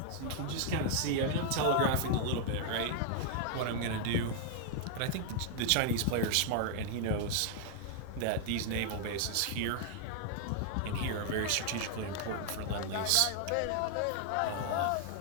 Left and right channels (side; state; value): both; different; correlation 0.00